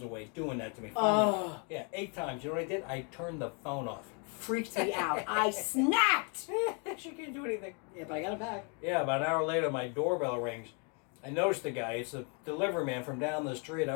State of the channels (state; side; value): quieter; right; 36.9 dB